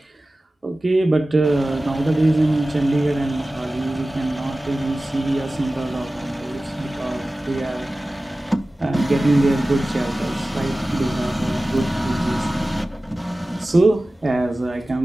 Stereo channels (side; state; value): both; normal; correlation 0.96